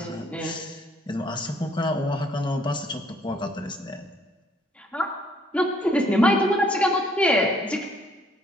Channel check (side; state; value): both; normal; correlation 0.64